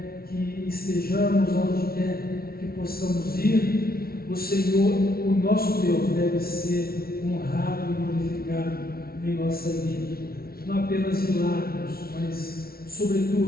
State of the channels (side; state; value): right; late; 0.44 ms